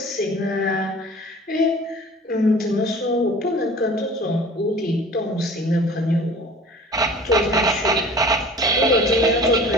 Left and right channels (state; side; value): normal; both; correlation 0.44